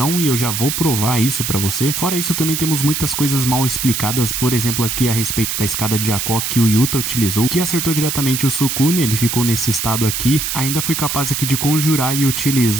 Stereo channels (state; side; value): noise; right; hiss, 2 dB below the sound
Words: e eu já vou provar isso pra você. Fora isso, também temos muitas coisas mal explicadas, por exemplo, aqui a respeito da escada de Jaco que o Yuta utilizou, que acertou diretamente o Sukuna, ele ficou nesse estado aqui. Ainda foi capaz aqui de conjurar e